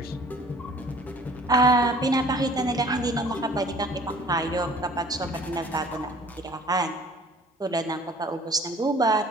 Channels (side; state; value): both; normal; correlation 0.51